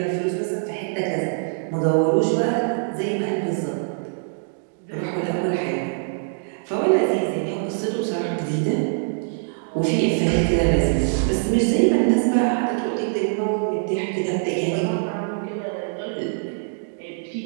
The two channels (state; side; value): silent; left; digital silence